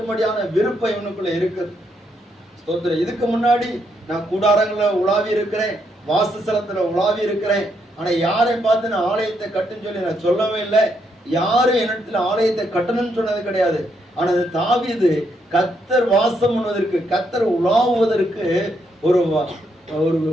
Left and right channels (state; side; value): normal; both; correlation 0.77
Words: விருப்பம் இவனுக்குள்ள இருக்குது. ஸ்தோத்திரம். இதுக்கு முன்னாடி நான் கூடாரங்களை உலாவி இருக்கிறேன், வாசஸ்தலத்துல உலாவி இருக்கிறேன். ஆனா யாரை பார்த்து நான் ஆலயத்தை கட்டுன்னு சொல்லி நான் சொல்லவே இல்லை. யாரும் என்னிடத்துல ஆலயத்தை கட்டணும்னு சொன்னது கிடையாது. ஆனா தாவீது கர்த்தர் வாசம் பண்ணுவதற்கு, கர்த்தர் உலாவுவதற்கு ஒரு